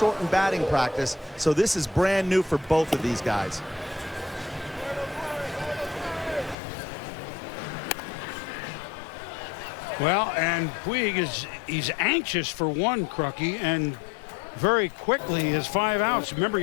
batting practice. So this is brand new for both of these guys. Well, and Puig he's anxious for one, Crucky, and very quickly has 5 outs. Remember,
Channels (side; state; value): right; drops out; at 6.6 s